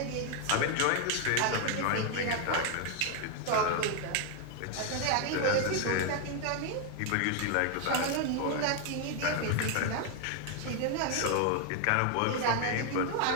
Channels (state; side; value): different; both; correlation 0.01